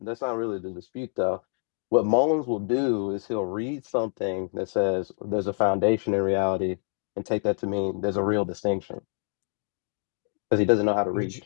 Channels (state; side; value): silent; right; digital silence